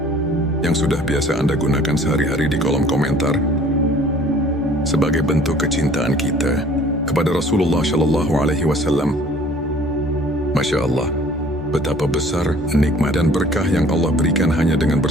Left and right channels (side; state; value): both; normal; correlation 0.52